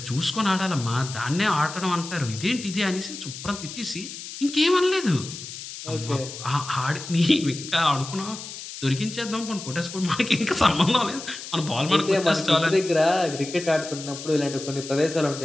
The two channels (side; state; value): left; noise; hiss, 11 dB below the sound